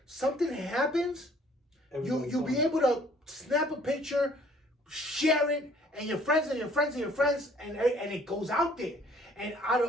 something happens, you'll be able to snap a picture, share it, and your friends and your friends and your friends, and it goes out there. And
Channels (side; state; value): both; normal; correlation 0.58